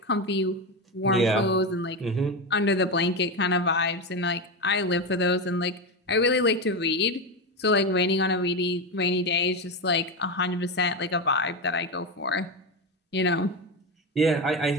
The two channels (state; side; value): normal; both; correlation 0.15